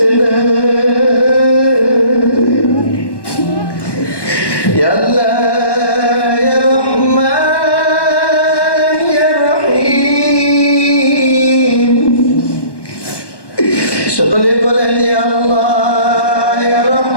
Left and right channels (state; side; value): late; right; 1.2 ms